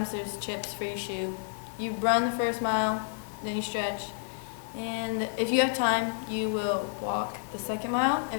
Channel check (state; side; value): silent; right; digital silence